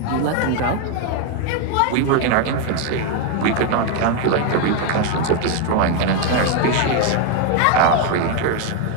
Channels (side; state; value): both; different; correlation 0.01